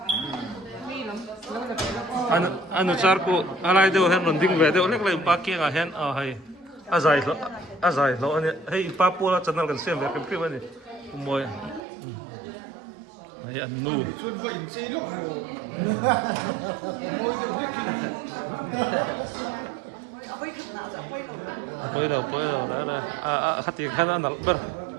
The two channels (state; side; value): drops out; left; at 11.8 s